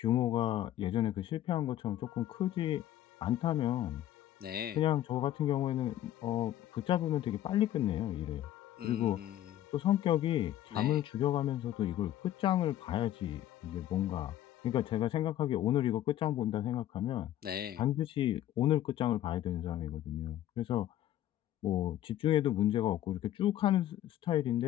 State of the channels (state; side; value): quieter; right; 12.6 dB